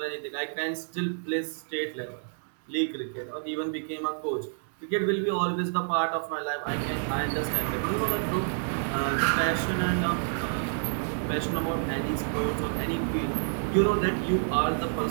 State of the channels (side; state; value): left; silent; digital silence